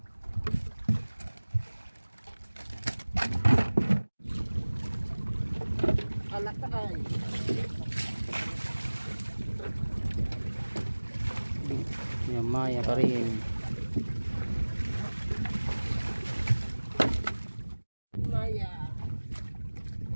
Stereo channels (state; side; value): inverted; both; correlation -1.00